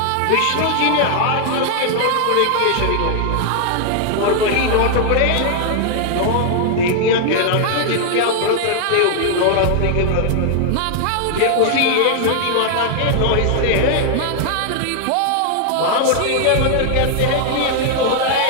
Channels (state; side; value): different; both; correlation 0.00